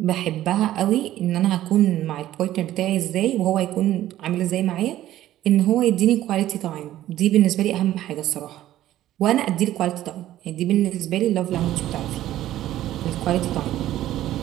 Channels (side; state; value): left; quieter; 13.6 dB